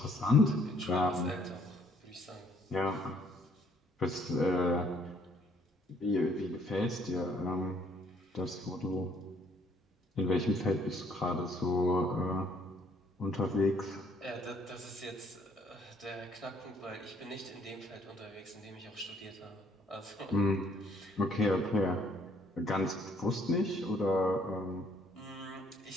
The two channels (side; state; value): both; normal; correlation 0.64